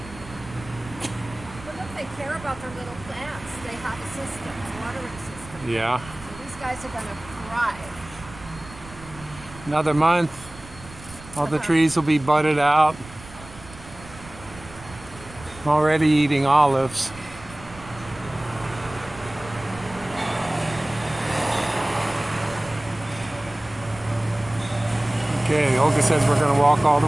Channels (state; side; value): noise; right; rumble, 17 dB below the sound